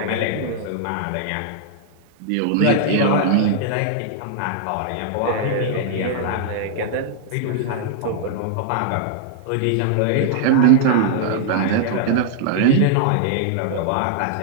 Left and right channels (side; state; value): both; different; correlation -0.01